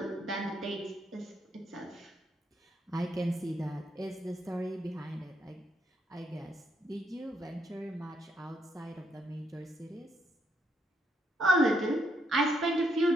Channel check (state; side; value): normal; both; correlation 0.75